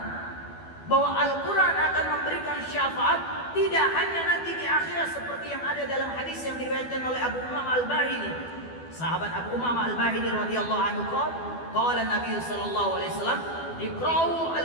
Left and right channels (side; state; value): right; late; 12 ms